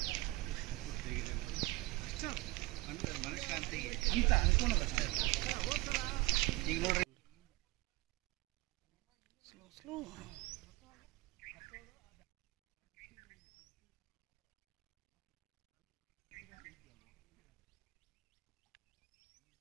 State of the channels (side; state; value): left; quieter; 21.5 dB